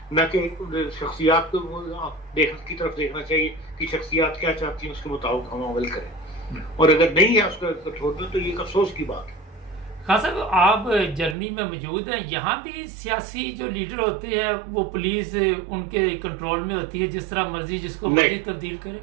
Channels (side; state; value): left; drops out; at 11.4 s